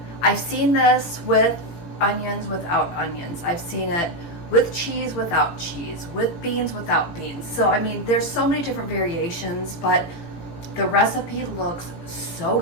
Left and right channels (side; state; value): right; late; 18 ms